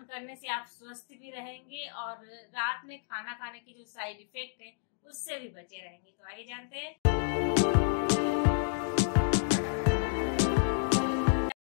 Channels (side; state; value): right; silent; digital silence